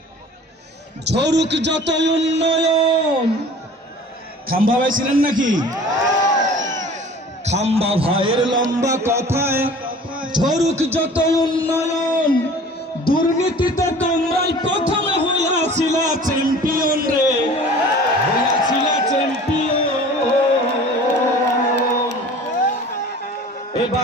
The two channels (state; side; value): normal; both; correlation 0.44